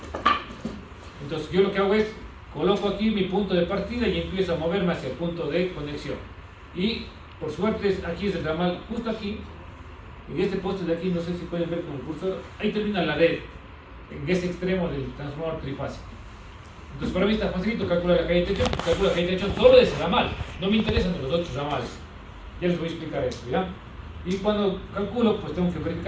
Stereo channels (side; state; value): both; identical; correlation 1.00